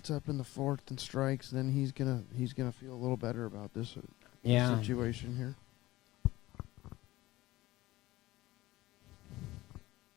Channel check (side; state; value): right; quieter; 18.1 dB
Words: up in the fourth and strikes, then he's gonna feel a little better about this situation here.